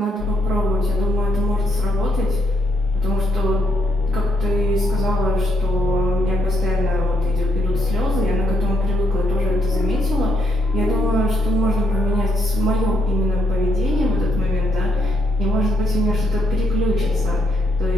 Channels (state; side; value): normal; both; correlation 0.75